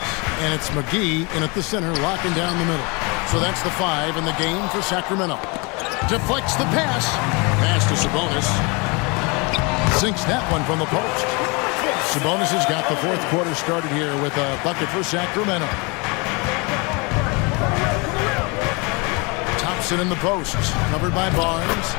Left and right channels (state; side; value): quieter; right; 29.3 dB